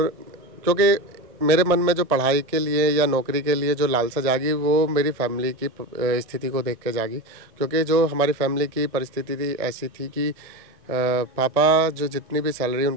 क्योंकि मेरे मन में जो पढ़ाई के लिए या नौकरी के लिए जो लालसा जागी वो मेरी फैमिली की स्थिति को देख के जागी। क्योंकि जो हमारी फैमिली की परिस्थिति थी ऐसी थी कि पापा जो जितनी भी सैलरी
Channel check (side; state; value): left; late; 1.6 ms